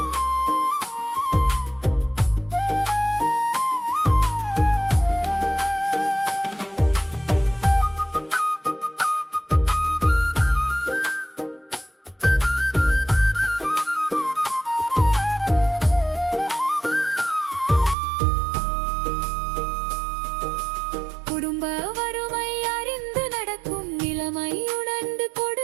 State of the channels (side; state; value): left; drops out; at 17.9 s